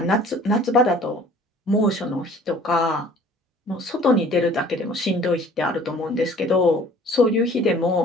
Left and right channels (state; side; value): normal; both; correlation 0.51